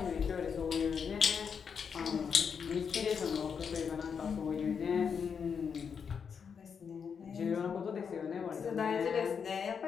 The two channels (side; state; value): right; quieter; 6.6 dB